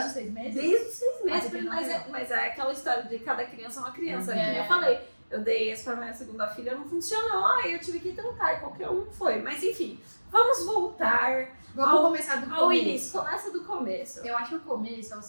os 6 meses? Desde os 6 meses. Mas é aquela história de cada criança é uma criança. Que eu falei, eu dei esse pra minha segunda filha, não funcionou. Aí eu tive que tentar, e qualquer um foi. Mas enfim, vamos voltar... Vamos começar do começo. Início, começa do começo. Eu acho que o começo é o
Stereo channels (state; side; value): inverted; both; correlation -1.00